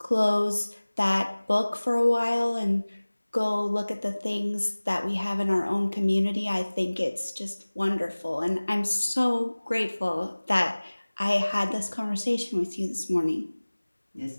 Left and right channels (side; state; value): both; inverted; correlation -1.00